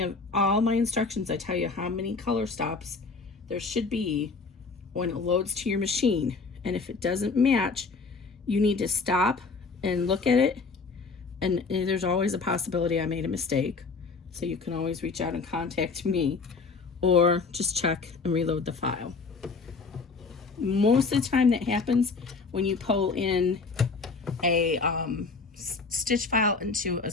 of all my instructions, I tell you how many color stops there should be when it loads to your machine. And if it doesn't match, you need to stop and look at it. And there's always a possibility I made a mistake. So you can always reach out and contact me, or just check and reload the file. Most of the time that happens when you pull in a stitch file into a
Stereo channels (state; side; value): quieter; right; 4.4 dB